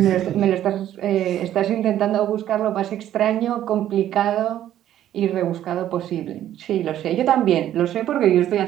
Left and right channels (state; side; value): quieter; left; 11.9 dB